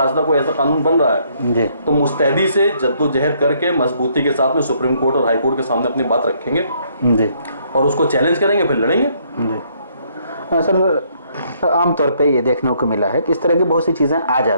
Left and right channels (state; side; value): inverted; both; correlation -0.68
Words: कोई ऐसा कानून बन रहा है जी, तो मुस्तैदी से जद्दोजहद करके मजबूती के साथ में सुप्रीम कोर्ट और हाई कोर्ट के सामने अपनी बात रखेंगे जी और उसको चैलेंज करेंगे, फिर लड़ेंगे। जी। सर आमतौर पे ये देखने को मिला है कि इस तरह की बहुत सी चीज़ें आ